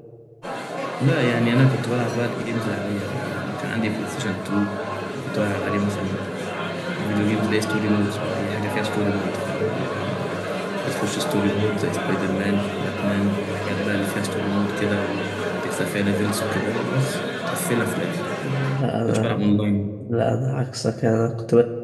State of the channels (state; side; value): identical; both; correlation 1.00